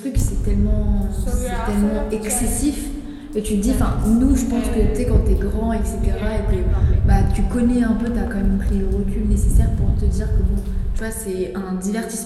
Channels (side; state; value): both; identical; correlation 1.00